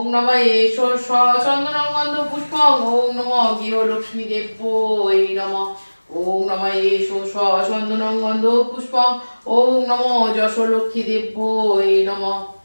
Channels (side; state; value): both; inverted; correlation -1.00